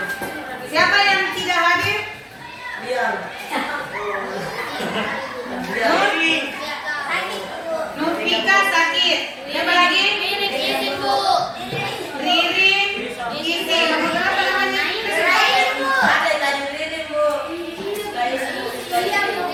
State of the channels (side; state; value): both; identical; correlation 1.00